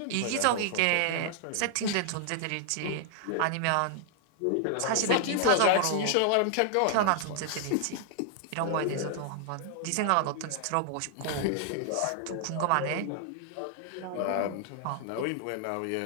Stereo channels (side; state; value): both; different; correlation 0.00